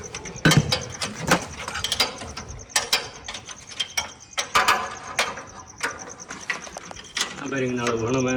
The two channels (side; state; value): both; identical; correlation 1.00